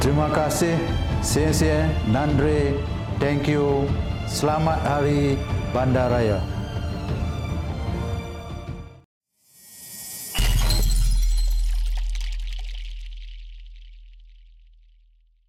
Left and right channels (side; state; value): both; identical; correlation 1.00